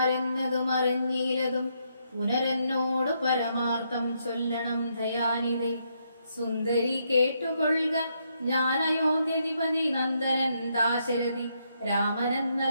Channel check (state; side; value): inverted; both; correlation -0.77